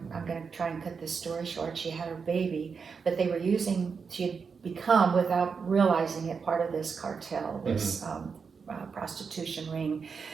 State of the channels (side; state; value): left; quieter; 5.6 dB